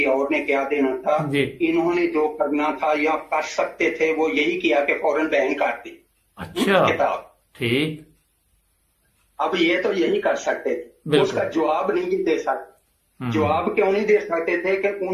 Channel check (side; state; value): both; identical; correlation 1.00